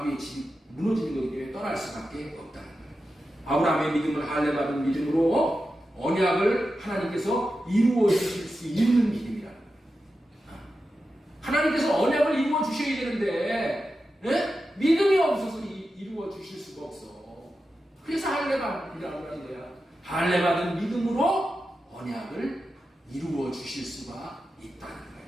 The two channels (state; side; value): normal; both; correlation 0.91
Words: 집이 무너지는 거기 때문에 떠날 수밖에 없다는 거예요. 아브라함의 믿음은 할례받은 믿음으로 언약을 하나님께서 이루어 주실 수 있는 믿음이라는 거예요. 하나님께서 언약을 이루어 주셔야 되는데 믿음이 없어서 이루어 주실 수가 없어. 그래서 할례받으라고 하는 거야. 할례받은 믿음으로 언약을 이루어 주실 수가 있다는 거예요.